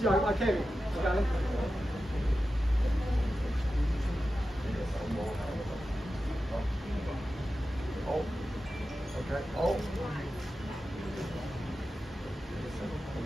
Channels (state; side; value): normal; both; correlation 0.92